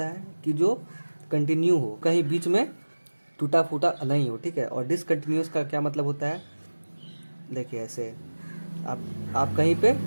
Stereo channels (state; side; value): inverted; both; correlation -1.00